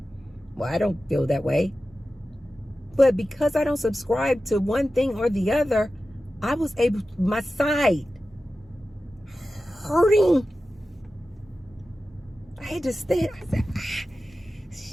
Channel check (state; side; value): normal; both; correlation 0.94